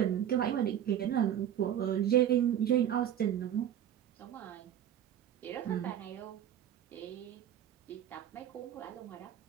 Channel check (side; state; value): left; quieter; 10.4 dB